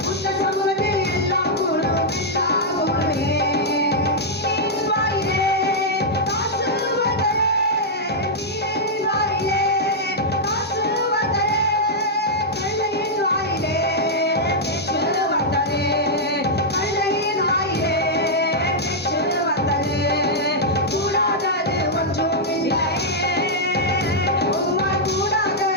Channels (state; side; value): normal; both; correlation -0.06